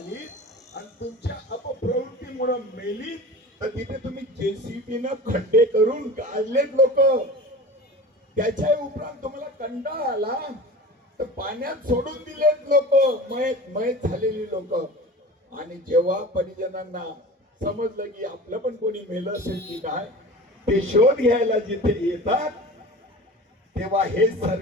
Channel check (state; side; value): normal; both; correlation 0.35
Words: आणि तुमच्या अपप्रवृत्तीमुळे मेली, तर तिथे तुम्ही JCB खड्डे करून काढलेत लोक। त्याच्या उपरांत तुम्हाला कंटाळा आला तर पाण्यात सोडून दिलेत लोक, मयत झालेली लोक। आणि जेव्हा परिजनांना समजलं की आपलं पण कोणी मेलं असेल की काय, ते शोध घ्यायला जिथे येतात तेव्हा हे